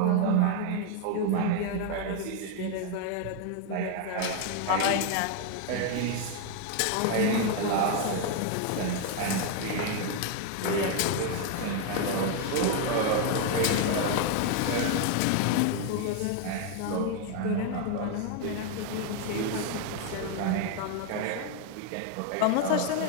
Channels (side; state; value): both; different; correlation 0.01